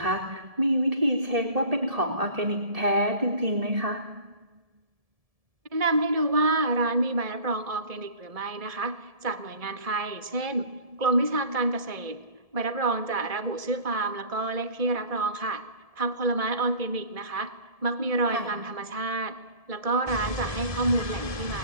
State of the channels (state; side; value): late; left; 1.7 ms